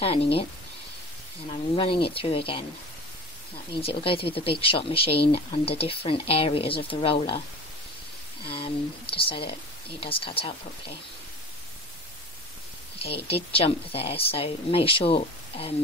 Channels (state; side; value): normal; both; correlation 0.37